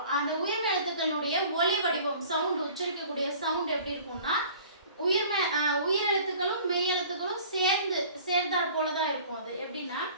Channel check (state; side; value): inverted; both; correlation -0.47